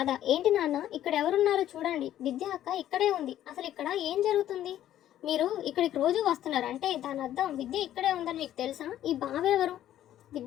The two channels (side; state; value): right; quieter; 12.1 dB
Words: ఏంటి నాన్న, ఇక్కడ ఎవరున్నారో చూడండి, విద్య అక్క ఇక్కడే ఉంది, అసలు ఇక్కడ ఏం జరుగుతుంది, మీరు ఇక్కడికి రోజు వస్తున్నారు అంటే దాని అర్థం విద్య ఇక్కడే ఉందని మీకు తెలుసా, ఈ బావెవరు,